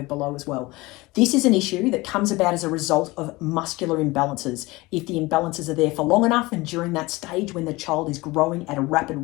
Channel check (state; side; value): quieter; right; 21.7 dB